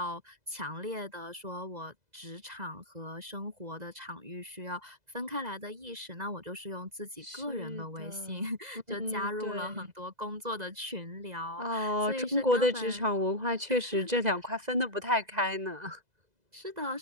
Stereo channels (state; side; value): late; left; 2.0 ms